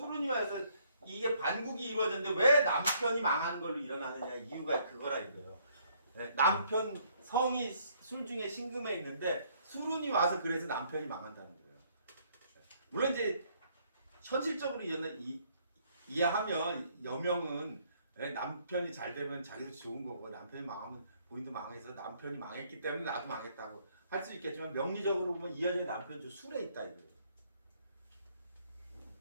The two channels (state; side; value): inverted; both; correlation -0.66